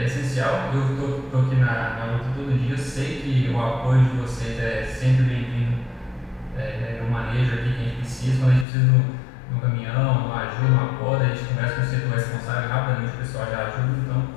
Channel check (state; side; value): drops out; right; at 8.7 s